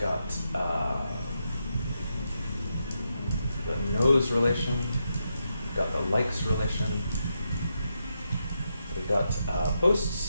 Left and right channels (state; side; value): inverted; both; correlation -0.84